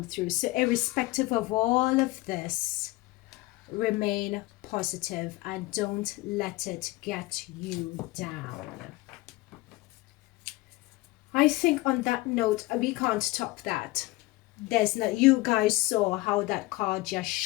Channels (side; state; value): right; quieter; 20.1 dB